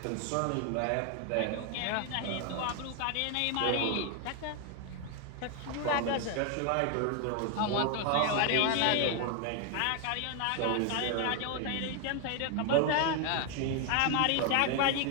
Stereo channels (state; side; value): different; both; correlation 0.01